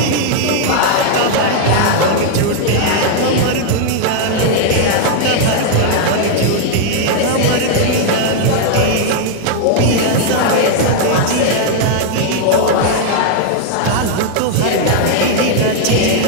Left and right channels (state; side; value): different; both; correlation 0.00